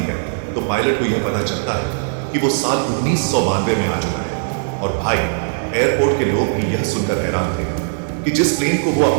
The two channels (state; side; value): silent; left; digital silence